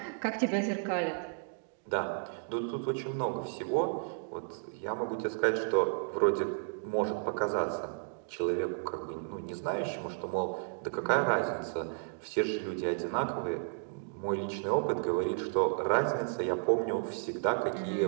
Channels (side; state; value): left; silent; digital silence